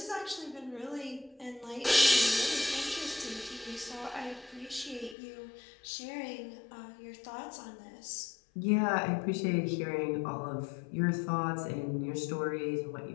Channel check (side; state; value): right; drops out; at 5.2 s